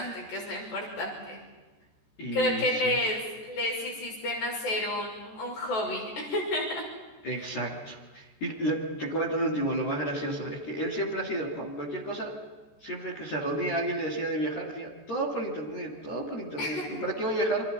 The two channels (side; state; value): right; late; 14 ms